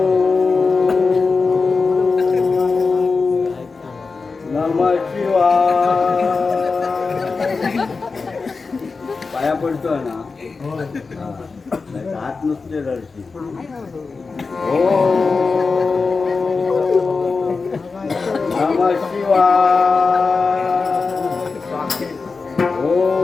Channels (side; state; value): right; quieter; 4.4 dB